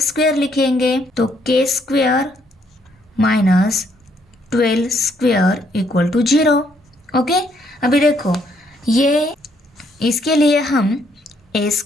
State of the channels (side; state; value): both; normal; correlation 0.70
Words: स्क्वायर लिखेंगे। तो K square minus 12 square equal to 0। Okay, अभी देखो ये इसके लिए हम A